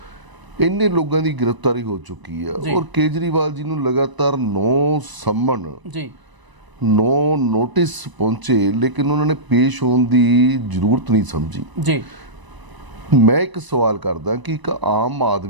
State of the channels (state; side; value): late; left; 1.0 ms